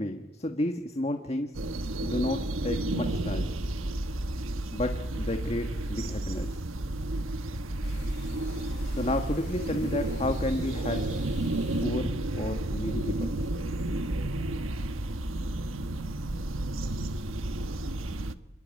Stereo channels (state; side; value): normal; both; correlation 0.68